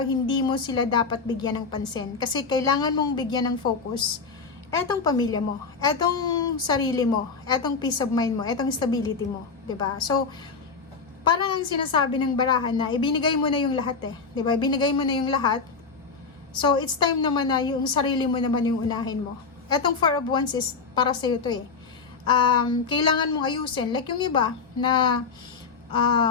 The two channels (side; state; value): right; quieter; 5.0 dB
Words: hindi mo sila dapat bigyan ng pansin. Kasi kailangan mong bigyan ng focus etong pamilya mo, etong sarili mo, etong peace of mind mo, etong stability mo. 'Di ba? So, parang ang sinasabi ng barahan na ibinigay mo na yung lahat eh. 'Di ba? Ibinigay mo na yung lahat. So, it's time naman na yung sarili mo naman yung unahin mo. Etong 4 of Wands is para sa'yo to eh. Kailangan mong ayusin. Like yung iba na